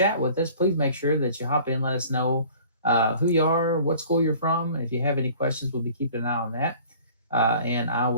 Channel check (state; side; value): inverted; both; correlation -0.49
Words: with us, please make sure that you hop in, let us know who you are, what school you're from. If you have any questions, we'll be keeping an eye on that. And I